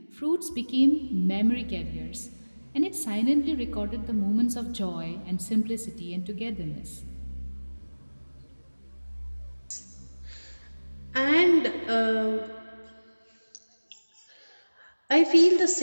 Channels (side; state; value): both; inverted; correlation -1.00